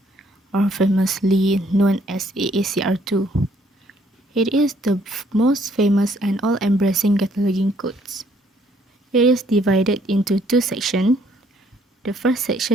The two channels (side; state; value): both; normal; correlation 0.65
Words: or famously known as AACR2. It is the most famous and all-embracing cataloging codes. It is divided into two sections. The first